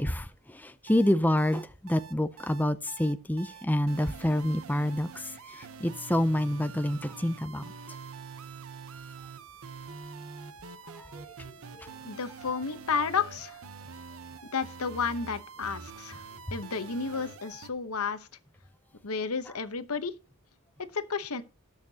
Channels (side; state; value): both; normal; correlation 0.70